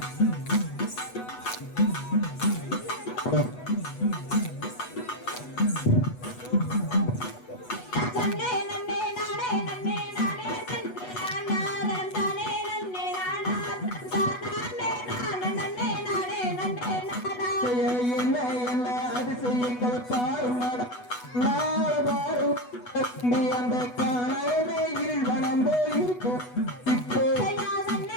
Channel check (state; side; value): late; right; 8.1 ms